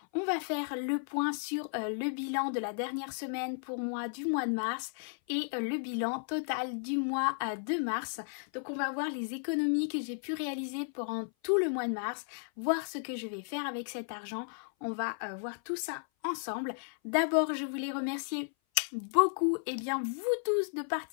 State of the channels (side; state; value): right; silent; 55 dB below the other